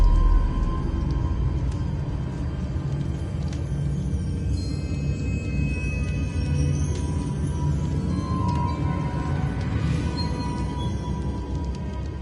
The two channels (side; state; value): both; identical; correlation 1.00